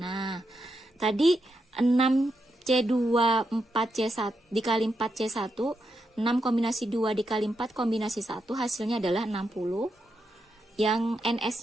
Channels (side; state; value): both; normal; correlation 0.84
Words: Nah, tadi 6C2 4C1 dikali 4C1, 6 kombinasi 2 dikali 4 kombinasi 1 hasilnya adalah 60. Yang